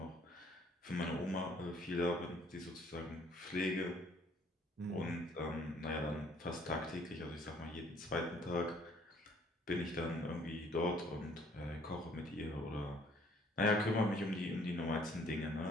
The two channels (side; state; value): both; normal; correlation 0.60